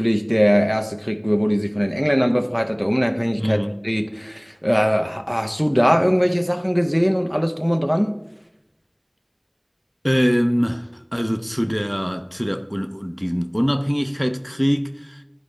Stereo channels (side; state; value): both; identical; correlation 1.00